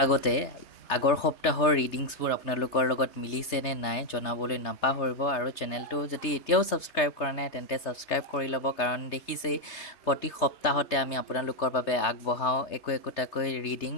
আগতে আগৰ সপ্তাহৰ ৰিডিংছবোৰ আপোনালোকৰ লগত মিলিছে নে নাই জনাবলৈ নাপাহৰিব আৰু চেনেলটো যদি এতিয়াও ছাবস্ক্ৰাইব কৰা নাই তেন্তে ছাবস্ক্ৰাইব কৰি ল'ব কাৰণ দেখিছেই প্ৰতি সপ্তাহতে আমি আপোনালোকৰ বাবে আগবঢ়াওঁ একোটাকৈ ৰিডিং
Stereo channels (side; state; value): right; late; 3.3 ms